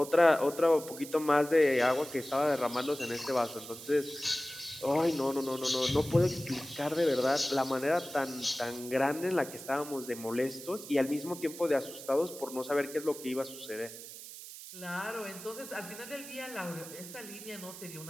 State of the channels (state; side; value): noise; right; hiss, 13 dB below the sound